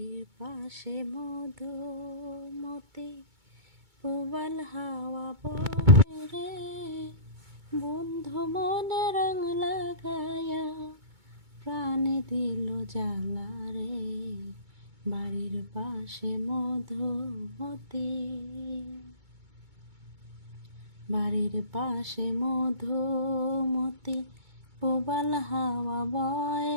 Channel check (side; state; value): left; late; 2.2 ms